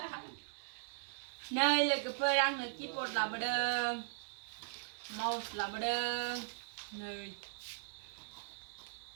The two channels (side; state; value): left; silent; digital silence